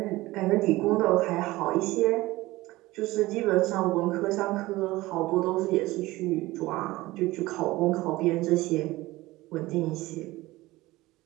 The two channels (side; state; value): left; quieter; 18.9 dB